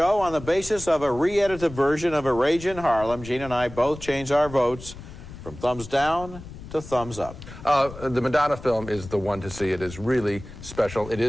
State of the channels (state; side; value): noise; left; rumble, 14 dB below the sound